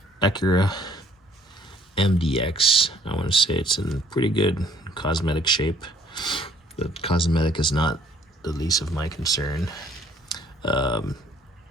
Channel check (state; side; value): normal; both; correlation 0.60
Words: Acura MDX. I want to say it's in pretty good cosmetic shape. The cosmetic is not the least of my concern.